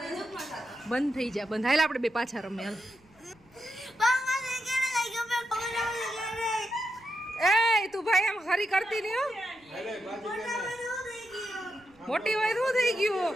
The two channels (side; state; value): right; noise; rumble, 30 dB below the sound